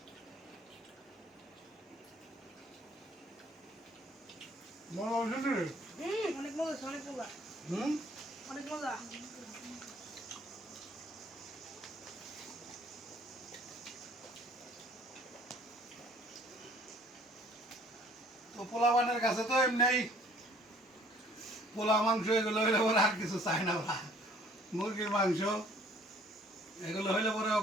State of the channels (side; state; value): both; normal; correlation 0.57